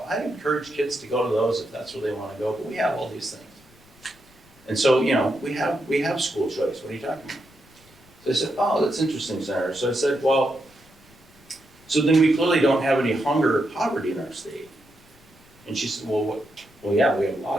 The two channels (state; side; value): noise; left; rumble, 28 dB below the sound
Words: encourage kids to go to those if that's where they want to go. But we have all these things, and so we have school choice. What are you talking about?" So I said, "Oh, that's interesting, Senator." So I said, "Well, So then we clearly don't have any hunger or poverty in our state. And she said, well, yeah, we have a